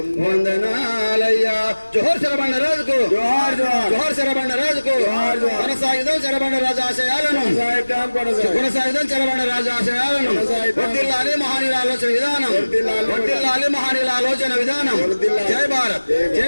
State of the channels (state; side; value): inverted; both; correlation -1.00